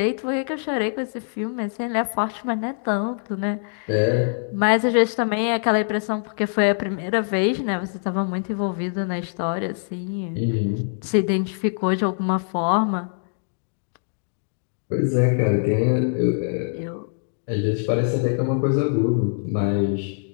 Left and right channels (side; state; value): right; silent; digital silence